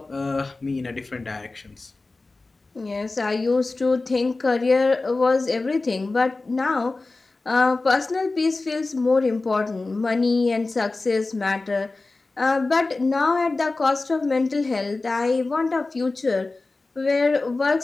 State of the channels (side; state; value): right; quieter; 3.4 dB